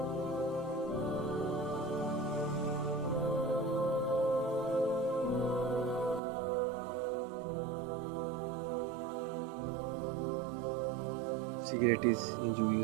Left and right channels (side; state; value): left; drops out; at 6.2 s